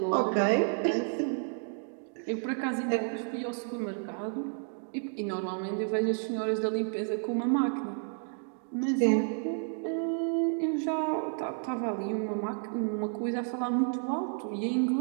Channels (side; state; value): left; silent; 57 dB below the other